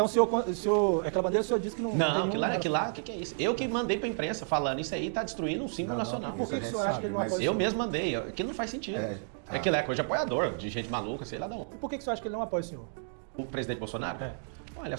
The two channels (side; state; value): left; silent; digital silence